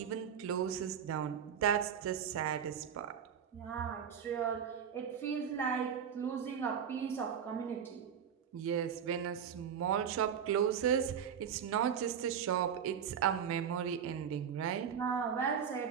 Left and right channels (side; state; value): left; quieter; 8.0 dB